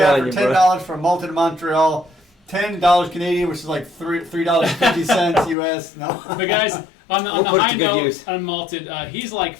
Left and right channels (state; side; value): drops out; right; at 5.6 s